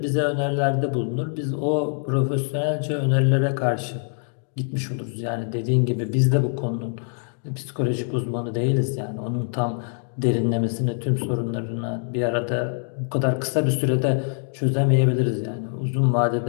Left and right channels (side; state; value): right; silent; 63 dB below the other